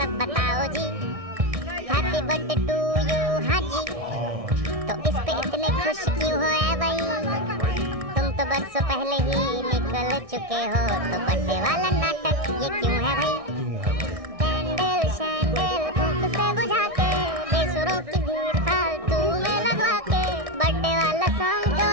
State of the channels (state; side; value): late; left; 1.6 ms